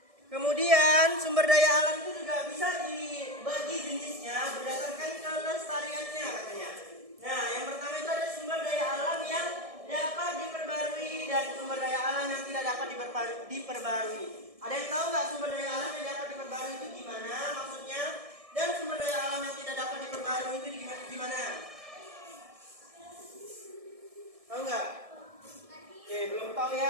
Kemudian sumber daya alam itu juga bisa dibagi jenisnya berdasarkan kelestariannya katanya. Nah, yang pertama itu ada sumber daya alam yang dapat diperbarui dan sumber daya alam yang tidak dapat diperbarui. Ada yang tahu nggak sumber daya alam yang dapat diperbarui itu gimana maksudnya? Dan sumber daya alam yang tidak dapat diperbarui itu gimana? Tahu nggak? Oke, belum tahu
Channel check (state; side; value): late; left; 1.6 ms